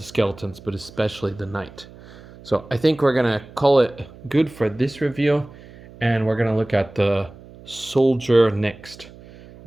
skeletons, but especially the Knight. So I think we're going to call it good for this review, and we're going to look at the Soldier next.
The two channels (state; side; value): noise; right; hum, 20 dB below the sound